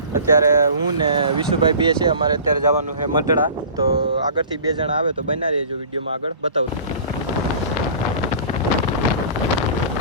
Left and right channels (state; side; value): inverted; both; correlation -0.41